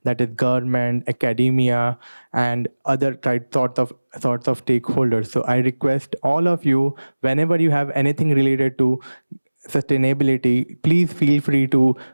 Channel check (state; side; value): inverted; both; correlation -1.00